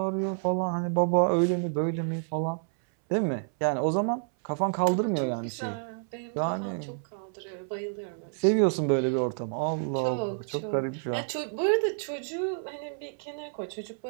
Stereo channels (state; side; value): silent; left; 59 dB below the other